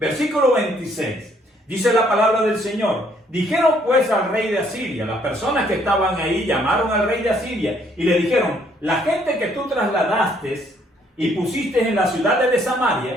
26. Dice la palabra del Señor: dijeron pues al rey de Asiria, las personas que estaban ahí llamaron al rey de Asiria y le dijeron: la gente que tú trasladaste y pusiste en las ciudades de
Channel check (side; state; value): both; normal; correlation 0.66